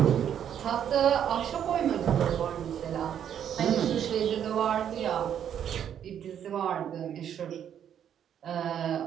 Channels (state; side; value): quieter; left; 9.3 dB